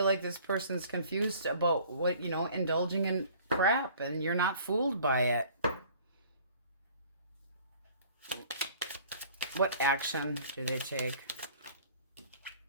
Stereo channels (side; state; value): both; inverted; correlation -0.51